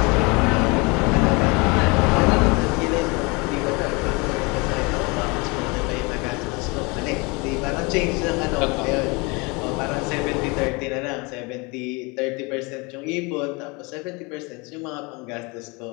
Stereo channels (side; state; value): right; quieter; 28.0 dB